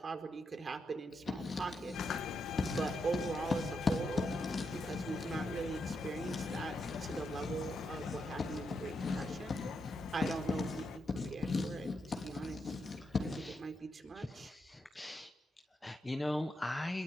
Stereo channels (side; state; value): both; normal; correlation 0.83